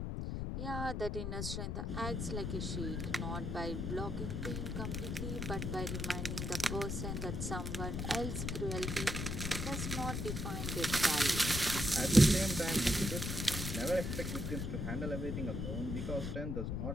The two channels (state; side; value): noise; left; rumble, 2 dB below the sound